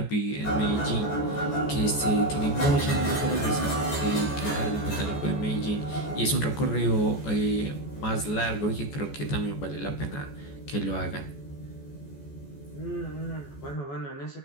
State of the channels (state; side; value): late; right; 14 ms